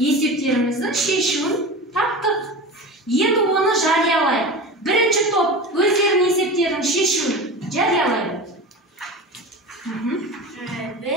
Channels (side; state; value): both; normal; correlation 0.30